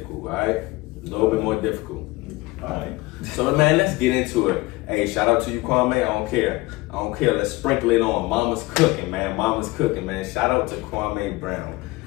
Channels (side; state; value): right; quieter; 21.6 dB